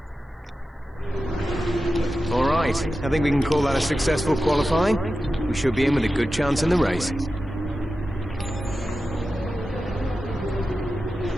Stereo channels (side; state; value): both; normal; correlation 0.93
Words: I think we can call that a successful qualifying. We should be in with a good chance in the race.